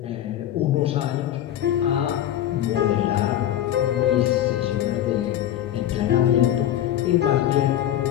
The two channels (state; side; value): quieter; right; 11.8 dB